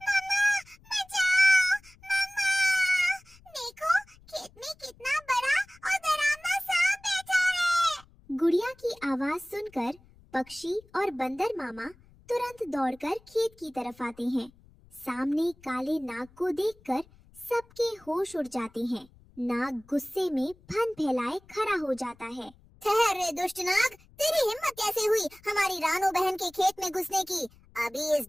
मम्मा, बचाओ! मम्मा! देखो, खेत में कितना बड़ा और डरावना सांप बैठा है। गुड़िया की आवाज सुनकर पक्षी और बंदर मामा तुरंत दौड़कर खेत की तरफ आते हैं। सामने काले नाग को देखकर सबके होश उड़ जाते हैं। नाग गुस्से में फन फैलाए खड़ा हो जाता है। ठहर रे दुष्ट नाग, तेरी हिम्मत कैसे हुई हमारी रानू बहन के खेत में घुसने की? अभी इस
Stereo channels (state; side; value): noise; left; rumble, 27 dB below the sound